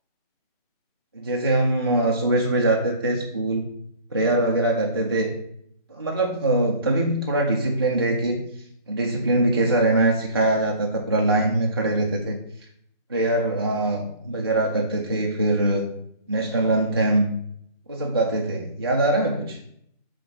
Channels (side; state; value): both; inverted; correlation -0.47